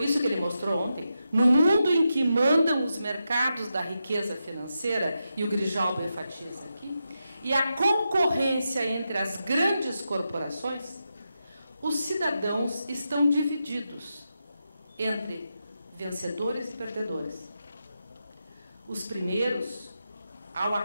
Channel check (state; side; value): inverted; both; correlation -0.87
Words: isso que ele mostrou ontem, no mundo em que mandam os mercados da riqueza financeira, e o Grijalbo enfatiza aqui, e a concorrência entre as grandes corporações, os cidadãos estão divididos entre vencedores e perdedores. Os primeiros, ao